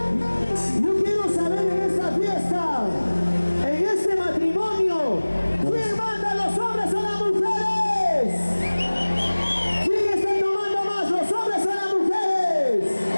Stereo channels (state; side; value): inverted; both; correlation -1.00